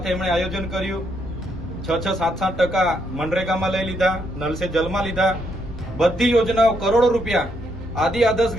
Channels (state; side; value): normal; both; correlation 0.75